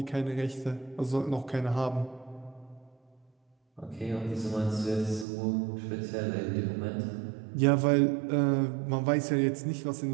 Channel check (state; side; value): drops out; left; at 5.2 s